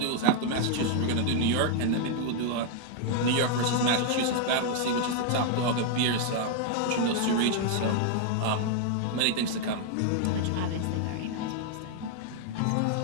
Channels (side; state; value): both; different; correlation 0.00